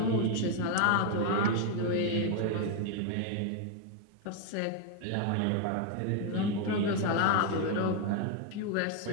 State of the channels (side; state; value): both; different; correlation 0.01